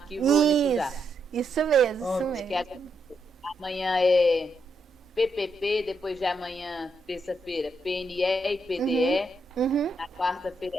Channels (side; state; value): both; normal; correlation 0.80